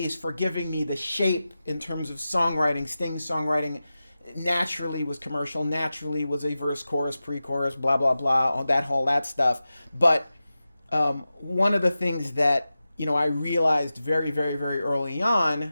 for giving me the shape in terms of songwriting. Sting's songwriting naturally was commercial, naturally was a verse, chorus, pre-chorus, blah, blah, blah, all that stuff. But one of the things that, I realized very, very, very early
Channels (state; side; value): inverted; both; correlation -0.94